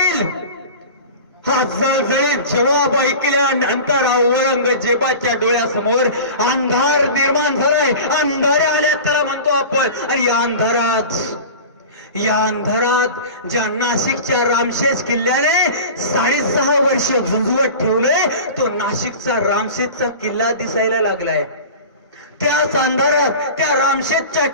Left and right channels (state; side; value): inverted; both; correlation -0.34